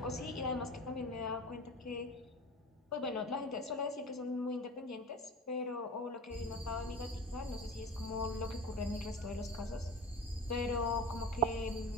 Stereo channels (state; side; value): normal; both; correlation 0.34